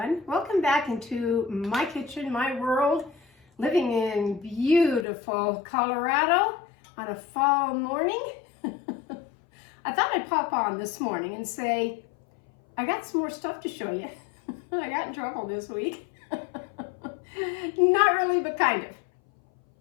Welcome back into my kitchen, my world, living in beautiful Colorado on a fall morning. I thought I'd pop on this morning and say, I got some more stuff to show you. I got in trouble this week. Not really, but kind of.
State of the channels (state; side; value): drops out; right; at 5.1 s